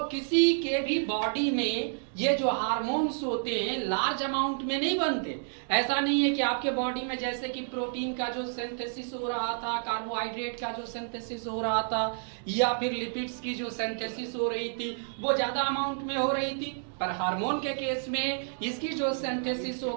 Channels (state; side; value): silent; left; digital silence